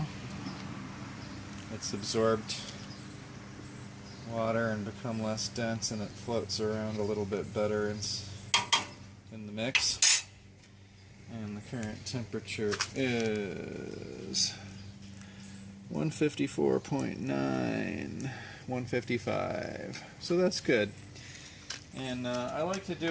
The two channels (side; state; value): both; identical; correlation 1.00